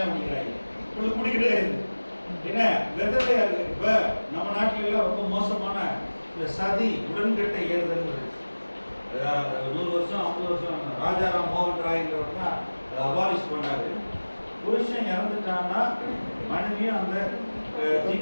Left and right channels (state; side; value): inverted; both; correlation -1.00